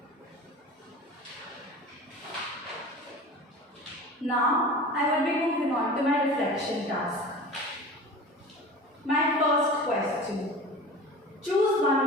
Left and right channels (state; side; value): normal; both; correlation 0.36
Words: Now, I will be moving on to my reflection task. My first question. Choose one